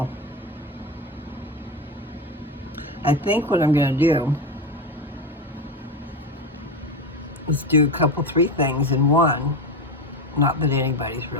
I think what I'm going to do is do a couple, three things in one. Not that anybody's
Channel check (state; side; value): normal; both; correlation 0.18